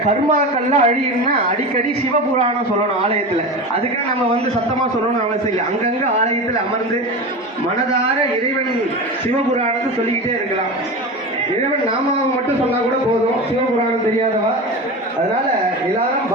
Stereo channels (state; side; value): normal; both; correlation 0.26